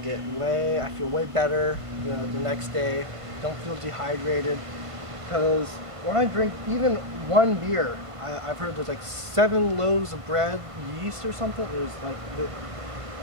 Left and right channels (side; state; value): left; late; 1.5 ms